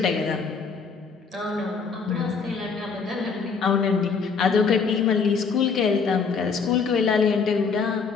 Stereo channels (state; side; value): quieter; right; 5.3 dB